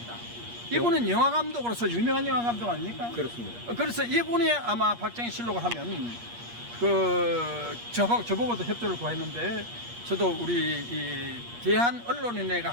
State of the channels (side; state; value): left; late; 8.5 ms